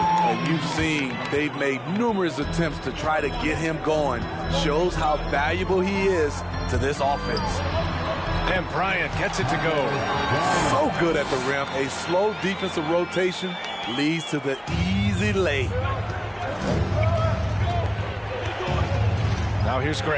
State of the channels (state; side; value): identical; both; correlation 1.00